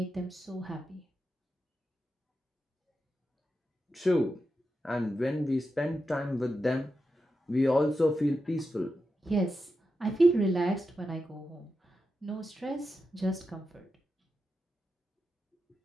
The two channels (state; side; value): normal; both; correlation 0.89